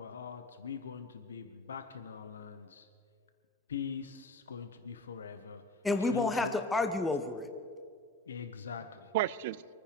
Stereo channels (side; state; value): both; normal; correlation 0.36